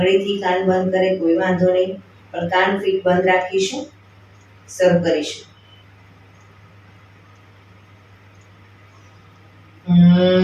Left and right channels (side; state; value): both; identical; correlation 1.00